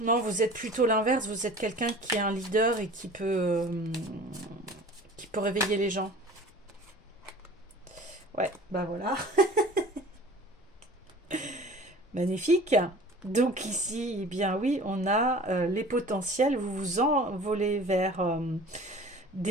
Non, vous êtes plutôt l'inverse. Vous êtes quelqu'un qui est un leader et qui peut réveiller les gens. Ouais, bah voilà. Magnifique. Donc ici, eh bien oui, on a les potentiels. Vous vous envolez vers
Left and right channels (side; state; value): both; normal; correlation 0.43